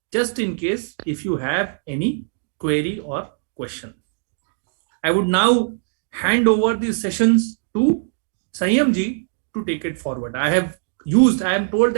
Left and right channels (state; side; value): silent; left; digital silence